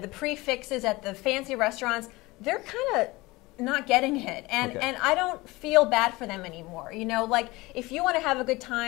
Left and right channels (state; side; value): quieter; right; 21.6 dB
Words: the prefixes at the fancy restaurants, they're kind of not getting it, and I don't feel bad for them anymore. Like if you want to have a good